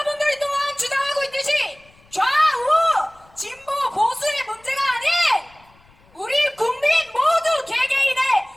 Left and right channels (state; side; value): noise; left; rumble, 30 dB below the sound